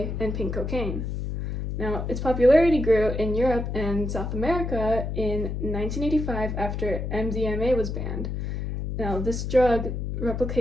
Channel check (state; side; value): noise; left; hum, 3 dB below the sound